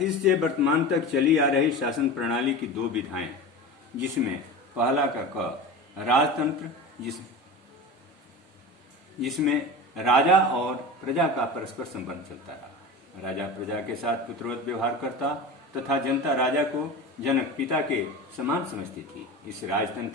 से वर्तमान तक चली आ रही शासन प्रणाली की दो विधाएं, जिसमें पहला का क राजतंत्र, जिसमें राजा और प्रजा का परस्पर संबंध चलता रहा। राजा प्रजा के साथ पुत्रवत व्यवहार करता तथा जनता राजा को जनक पिता के समान समझती थी। इस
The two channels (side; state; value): both; normal; correlation 0.30